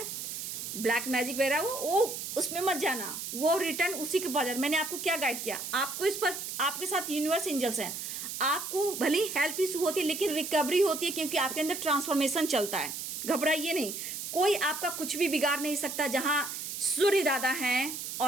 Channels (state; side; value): noise; right; hiss, 6 dB below the sound